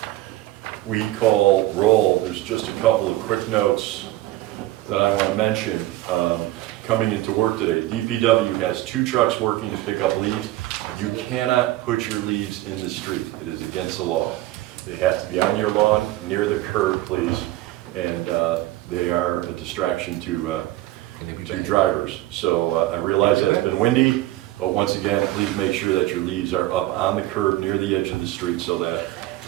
we call roll, there's just a couple of quick notes that I want to mention. Coming into work today, DPW has 2 trucks working to pick up leaves. You cannot put your leaves in the street. It is against the law. They have to be on your lawn, near the curb, please, and they are a distraction to drivers. So I realize that it's been windy, but once again, please make sure that your leaves are up on the curb near the edge of the street so that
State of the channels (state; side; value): quieter; left; 16.4 dB